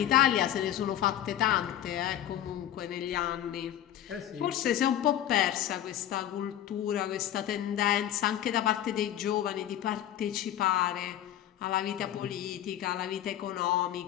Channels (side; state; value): right; quieter; 11.7 dB